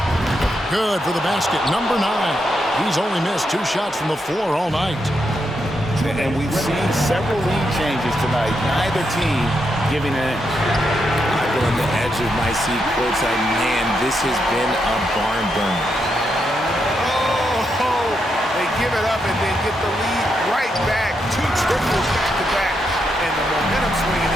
Good for the basket. Number 9. He's only missed 2 shots from the floor all night. And we've seen several lead changes tonight. Neither team giving an inch. I go on the edge of my seat courtside. Man, this has been a barn burner. Oh, they give it up and then get the lead right back. 2 triples back to back. And the momentum swing in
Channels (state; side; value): normal; both; correlation 0.82